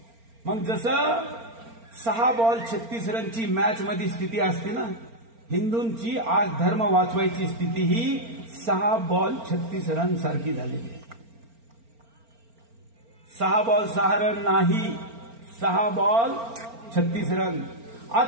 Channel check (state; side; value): late; left; 4.4 ms